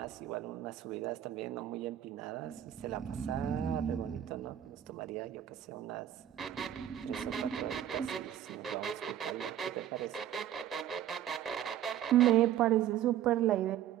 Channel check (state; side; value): quieter; left; 11.2 dB